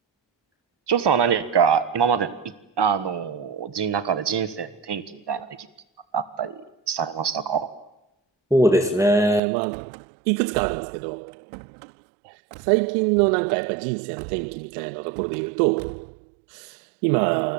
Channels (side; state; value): left; drops out; at 9.4 s